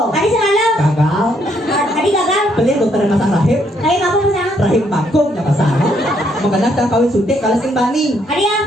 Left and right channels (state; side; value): normal; both; correlation 0.71